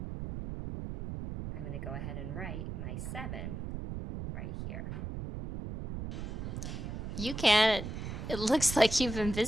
I'm going to go ahead and write my 7 right here. UCan, it looks like you've been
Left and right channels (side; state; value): right; noise; rumble, 6 dB below the sound